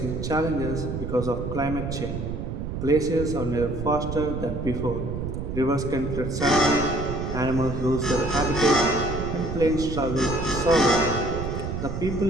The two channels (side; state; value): right; noise; rumble, 5 dB below the sound